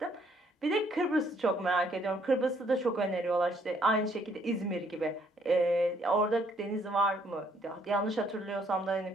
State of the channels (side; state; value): both; normal; correlation 0.67